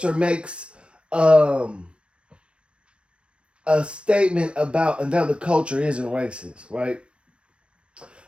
or makes um a statement about another culture isn't racist, right?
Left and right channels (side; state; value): left; late; 0.059 ms